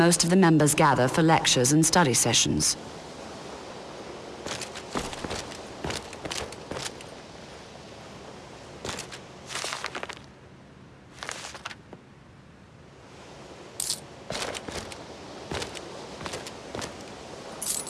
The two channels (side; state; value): both; identical; correlation 1.00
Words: of the members gather for lectures and study sessions.